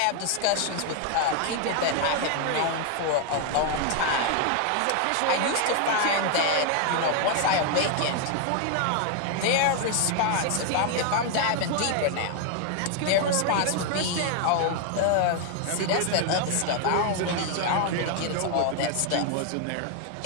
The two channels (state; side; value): different; both; correlation 0.00